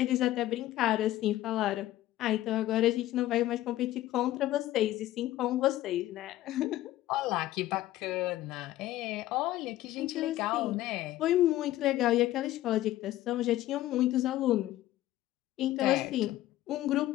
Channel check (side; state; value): right; quieter; 14.9 dB